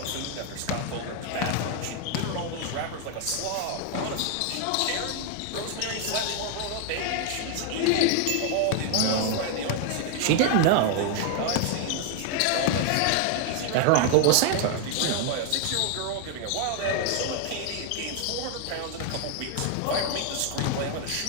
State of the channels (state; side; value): different; both; correlation 0.01